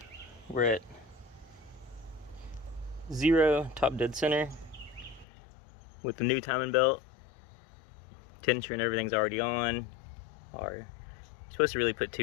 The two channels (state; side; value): drops out; right; at 5.2 s